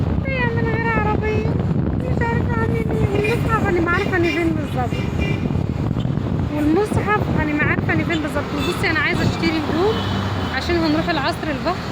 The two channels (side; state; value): both; identical; correlation 1.00